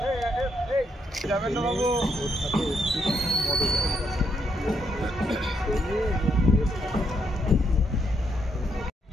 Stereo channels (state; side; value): normal; both; correlation 0.76